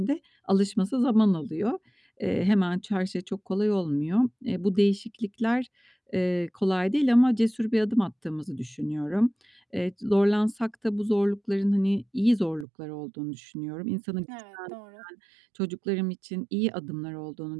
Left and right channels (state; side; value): drops out; left; at 12.7 s